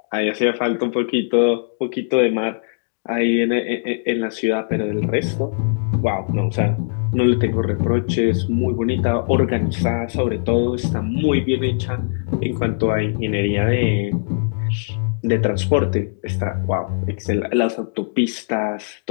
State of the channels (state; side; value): silent; right; digital silence